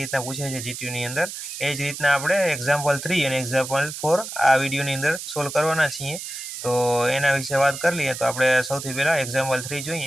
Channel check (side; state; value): right; noise; hiss, 8 dB below the sound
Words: પૂછાય છે જીટીયુની અંદર। એ જ રીતના આપણે એક્ઝામ્પલ 3 અને એક્ઝામ્પલ 4 આ વિડીયોની અંદર સોલ્વ કરવાના છીએ। તો એના વિશે વાત કરી લઈએ। તો આપણે સૌથી પહેલાં એક્ઝામ્પલ 3